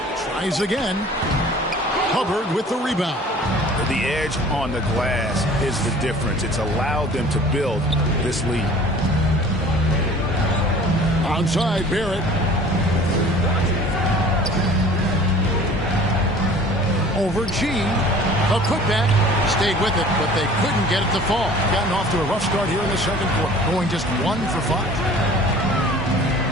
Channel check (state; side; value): normal; both; correlation 0.47